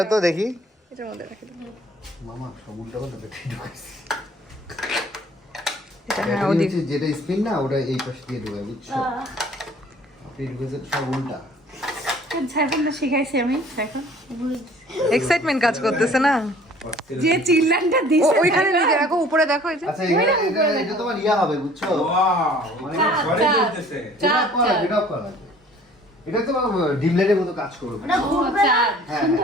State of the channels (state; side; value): normal; both; correlation 0.53